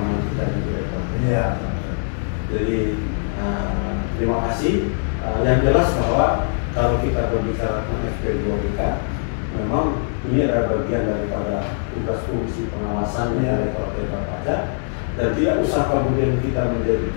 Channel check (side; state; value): right; silent; 64 dB below the other